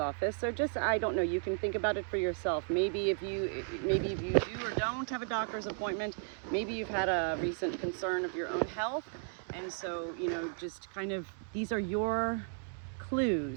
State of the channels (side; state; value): left; silent; 55 dB below the other